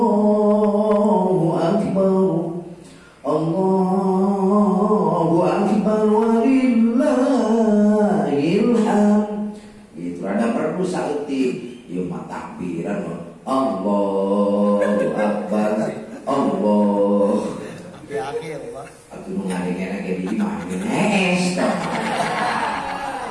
Akbar, Allahu Akbar, walillahil hamd. Itu ada perlu sakti, yo takbiran Allahu Akbar, Allah. Di akhir, Pak. Aku mengalihkan lagi di mana?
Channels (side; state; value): both; identical; correlation 1.00